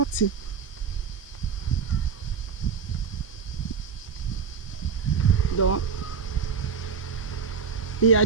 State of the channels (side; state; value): left; quieter; 6.0 dB